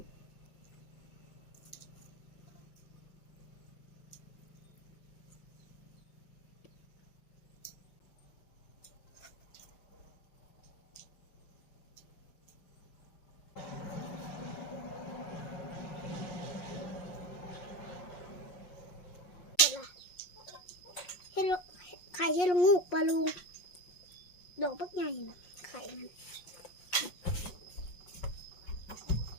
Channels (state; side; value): late; right; 5.5 ms